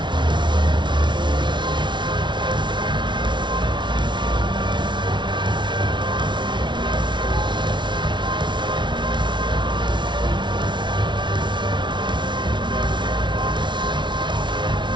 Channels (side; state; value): left; late; 0.23 ms